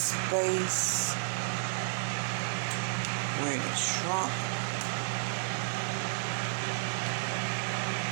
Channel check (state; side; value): silent; left; digital silence